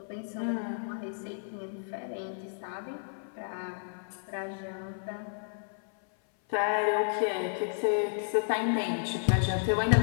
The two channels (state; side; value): silent; right; 57 dB below the other